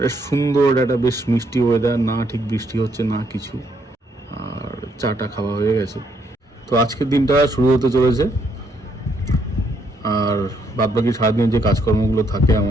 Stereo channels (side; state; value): both; normal; correlation 0.72